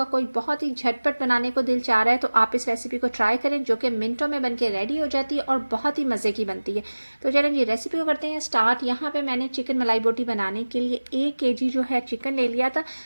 कोई बहुत ही झटपट बनाने को दिल चाह रहा है तो आप इस रेसिपी को ट्राई करें, जो कि मिनटों में बनके रेडी हो जाती है और बहुत ही मज़े की बनती है। तो चलें जी रेसिपी को करते हैं स्टार्ट। यहाँ पर मैंने चिकन मलाई बोटी बनाने के लिए 1 kg जो है चिकन ले लिया था,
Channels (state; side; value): inverted; both; correlation -1.00